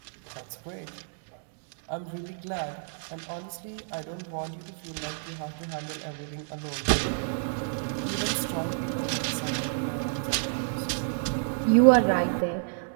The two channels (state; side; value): silent; left; digital silence